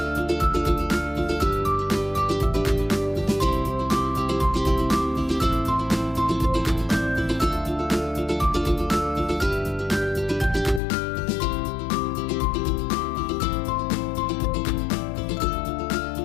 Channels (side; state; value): right; drops out; at 10.8 s